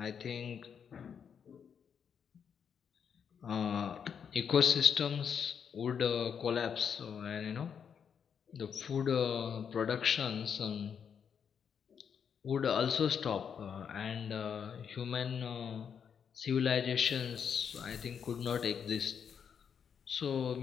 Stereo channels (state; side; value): quieter; right; 7.3 dB